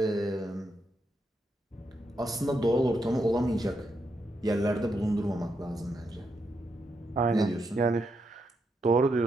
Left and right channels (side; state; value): both; normal; correlation 0.81